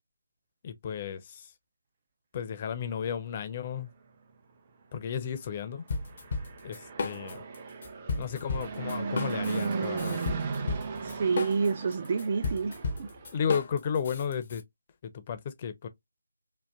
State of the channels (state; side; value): inverted; both; correlation -0.72